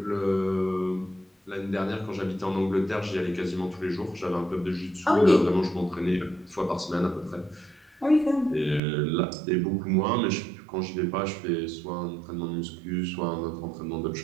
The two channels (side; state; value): left; drops out; at 8.8 s